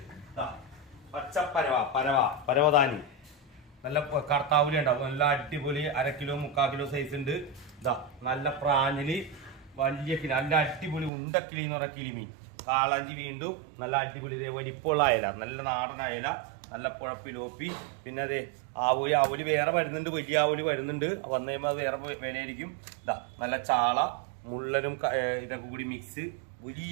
പച്ച പരവതാനി നല്ല കർത്താവുലി ഉണ്ടാവും നല്ല അടിപൊളി 1/2 കിലോ 3/4 കിലോ സൈസ് ഉണ്ട് ഇതാ നല്ല പ്രാഞ്ഞില് വലിയ കിളി നല്ല അടിപൊളി ഉണ്ടക്കിളി എന്ന് പറഞ്ഞ കിളിമീൻ കാളാഞ്ചി വീണ്ടും നല്ല അടിപൊളി വലിപ്പമുള്ള അയല നല്ല നാടൻ അയല നല്ല പുഴപ്പിലോപ്പി പിന്നെ അതെ ആവൂലി വേറെ വരുന്നുണ്ട് വലിയ ആവൂലി വരുന്നുണ്ട് വന്നു കഴിയുമ്പോൾ അത് വേറെ വിലയായിരിക്കും ഇതാ നല്ല ചാള മുള്ളനും ഇതൊക്കെ കൂടി മിക്സ്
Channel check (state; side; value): drops out; left; at 11.1 s